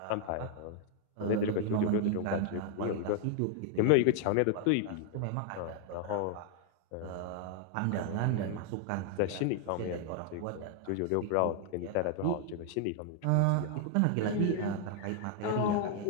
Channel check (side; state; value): both; different; correlation 0.00